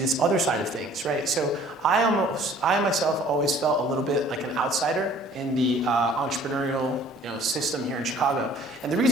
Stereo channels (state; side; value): normal; both; correlation 0.53